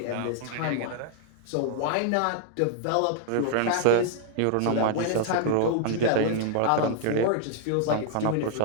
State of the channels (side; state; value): both; different; correlation -0.01